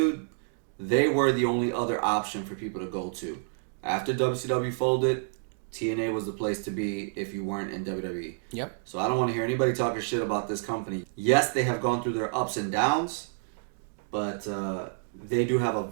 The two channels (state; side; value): silent; left; digital silence